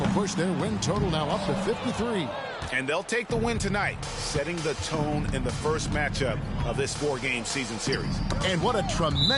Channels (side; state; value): both; identical; correlation 1.00